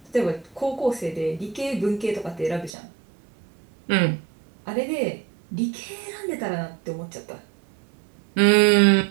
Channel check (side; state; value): left; drops out; at 2.7 s